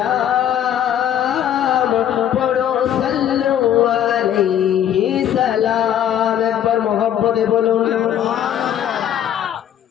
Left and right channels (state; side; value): quieter; right; 10.2 dB